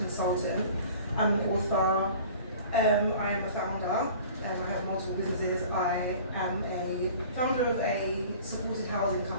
I'm an author, I am a founder, I have multiple businesses. I am a founder of a supported housing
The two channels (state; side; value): inverted; both; correlation -0.45